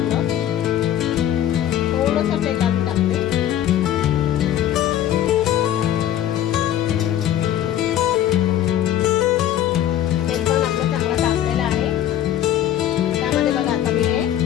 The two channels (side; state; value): right; quieter; 11.5 dB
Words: थोडंसं तेल टाकते. तेल पण आपलं चांगलं टाकलेलं आहे. त्यामध्ये बघा आता मी हे